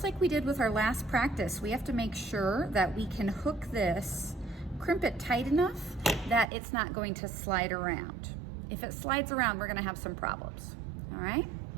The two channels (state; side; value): drops out; left; at 6.5 s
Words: like we did with our last practice, we have to make sure that we can hook this, crimp it tight enough that it's not going to slide around. If it slides around, we're gonna have some problems, all right?